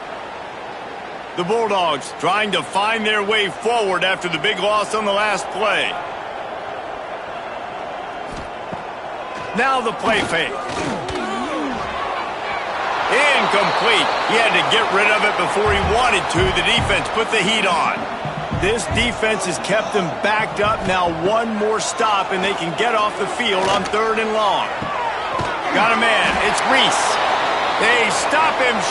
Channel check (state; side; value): identical; both; correlation 1.00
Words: The Bulldogs trying to find their way forward after the big loss on the last play. Now the play fake. Incomplete. He had to get rid of it before he wanted to. The defense put the heat on. This defense has kept them backed up. Now one more stop, and they can get off the field on 3rd and long. Got a man. It's Reese. They stop him